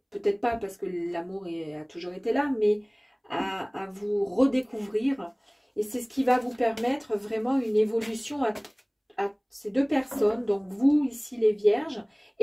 peut-être pas parce que l'amour a toujours été là, mais à vous redécouvrir. Et c'est ce qui va vous permettre vraiment une évolution à ces deux personnes, donc vous ici les vierges,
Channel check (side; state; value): both; identical; correlation 1.00